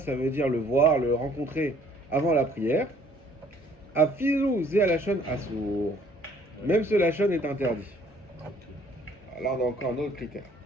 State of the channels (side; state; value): both; normal; correlation 0.59